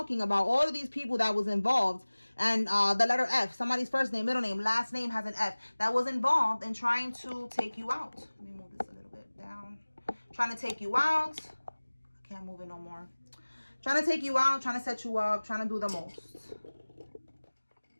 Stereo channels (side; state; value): both; inverted; correlation -1.00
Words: about all of these people that was involved, and the letter F, somebody's first name, middle name, last name has an F, that was involved in trying to take you out. Let me move this a little bit down. Trying to take you out. I can't move it no more. Trying to take you out, trying to set you up, trying to do the most.